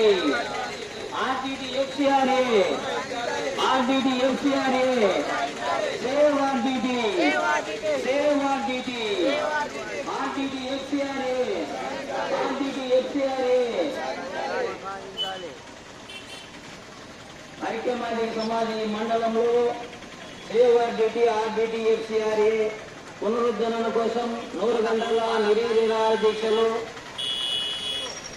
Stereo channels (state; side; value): identical; both; correlation 1.00